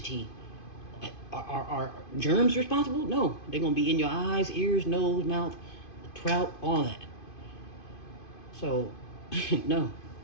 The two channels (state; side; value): late; right; 2.5 ms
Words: are germs responsible? No. They're gonna be in your eyes, ears, nose, mouth, trout, all that. So no.